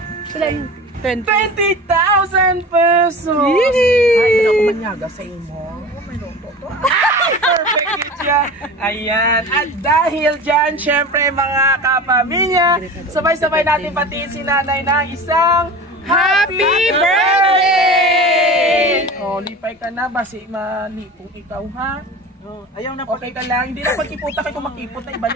20,000 pesos! Ay, hindi ako manyaga sa imo. Perfect yun siya. Ayan. At dahil dyan, syempre mga kapamilya, sabay-sabay natin patiin si nanay ng isang Happy Birthday! O, lipay ka na. Basi malipong ikaw, ha? Ayaw na Okay ka lang. Hindi na pagkiputa kayo kung makipot na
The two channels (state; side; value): normal; both; correlation 0.35